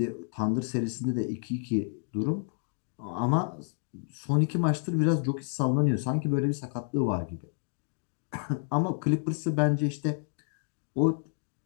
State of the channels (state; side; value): silent; right; digital silence